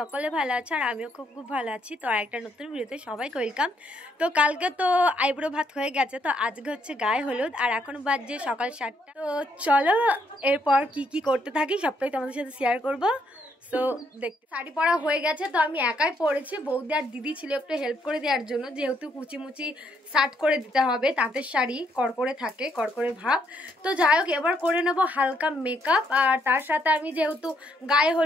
ভালো আছো আর আমিও খুব ভালো আছি। তো একটা নতুন ভিডিওতে সবাইকে ওয়েলকাম। তো কালকে তো আইব্রো ভাত হয়ে গেছে, তো আজকে হচ্ছে গায়ে হলুদ আর এখন বাজছে সকাল 7টা। তো চলো এরপর কি করতে থাকি সবটাই তোমাদের সাথে শেয়ার করবো। তো দেখতে শাড়ি পরা হয়ে গেছে, তো আমি একাই পরেছি। বৌদি আর দিদি ছিল একটু হেল্প করে দেওয়ার জন্য, যেহেতু কুচিমুচি শার্ট করে দিতে হবে, তাঁতের শাড়ি কড়কড়ে থাকে, কড়কড়ে ভাব। তো যাই হোক, এবার করে নেবো হালকা মেকআপ। আর তার সাথে আমি যেহেতু গায়ে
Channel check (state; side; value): normal; both; correlation 0.73